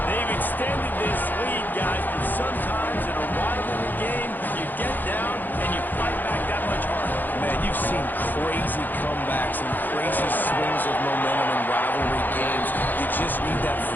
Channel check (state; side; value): late; right; 0.087 ms